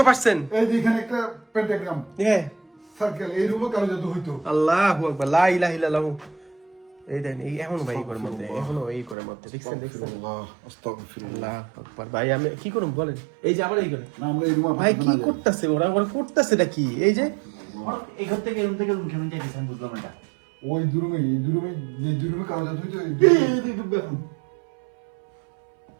এই যে এখানে একটা পেন্টাগ্রাম হ্যাঁ সার্কেল, এই রুমে কালো জাদু হইতো। আল্লাহু আকবার, লা ইলাহা ইল্লাল্লাহ। এই দেন এই এখনো ভাই এই ঘরের মধ্যে, এখনো এই ঘরের মধ্যে দেখছেন দেখছেন। আস্তাগফিরুল্লাহ। আল্লাহু আকবার ভাই, আমি কি করব বলেন? এই যে আবার এই ঘরে না আমরা এই রুমে ভাই কি করতেছে ওরা, ওরা করতেছেটা কি? এই যে এই ঘর থেকে রুম থেকে রুম কেমন যাইতেছেন বুঝলাম না। ওই দুই রুমে, এই দুই রুমে, এই দুই রুমে কালো জাদু হইতো। এই দুই রুমে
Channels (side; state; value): left; drops out; at 9.2 s